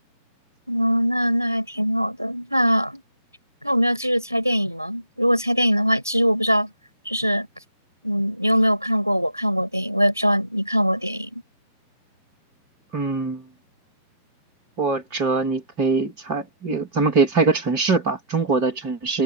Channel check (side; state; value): both; inverted; correlation -0.60